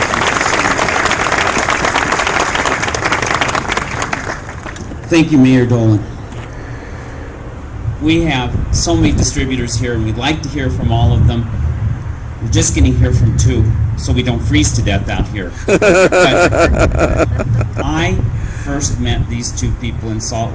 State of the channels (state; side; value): identical; both; correlation 1.00